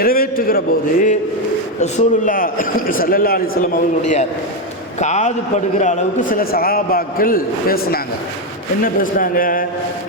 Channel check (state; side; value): normal; both; correlation 0.07